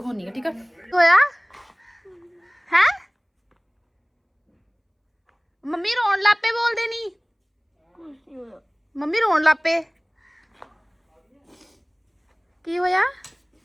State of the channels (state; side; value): identical; both; correlation 1.00